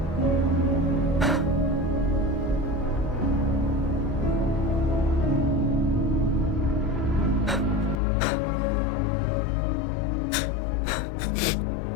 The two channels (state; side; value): drops out; right; at 8.0 s